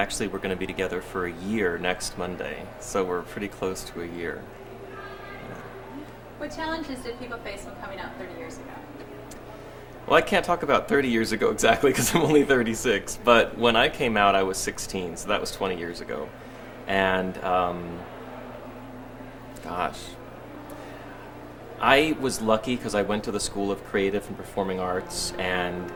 we're going to be together for a year next Monday, so we're pretty close to a year. What challenges did people face when coming out 30 years ago? Well, I can't talk about 30 years ago exactly because I'm only 36, but when I came out, I was 16, so that was 20 years ago. And, gosh, I was lucky because I went to the School of Creative and Performing Arts, and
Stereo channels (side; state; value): both; identical; correlation 1.00